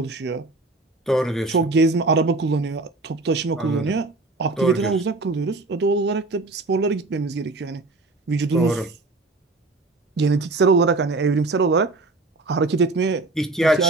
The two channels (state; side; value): quieter; left; 3.2 dB